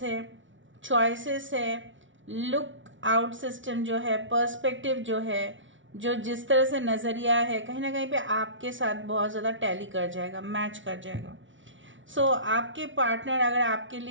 है, चॉइसेस है, लुक आउट सिस्टम जो है, पर्सपेक्टिव जो है, जो जिस तरह से नज़रिया है, कहीं ना कहीं पे आपके साथ बहुत ज़्यादा टैली कर जाएगा, मैच कर जाएगा। सो आपके पार्टनर अगर आपके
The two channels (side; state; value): left; late; 0.56 ms